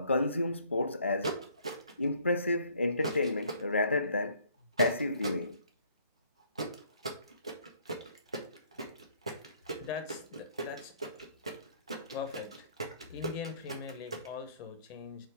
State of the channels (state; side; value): inverted; both; correlation -0.62